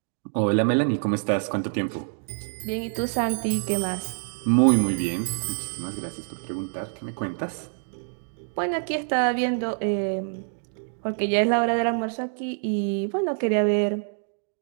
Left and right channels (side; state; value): left; silent; 56 dB below the other